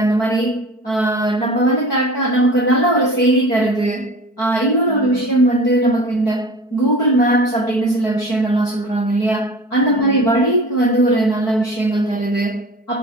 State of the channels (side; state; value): right; late; 4.6 ms